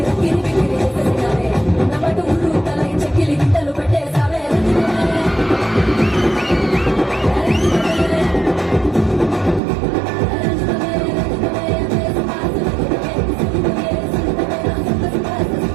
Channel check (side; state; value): left; drops out; at 9.6 s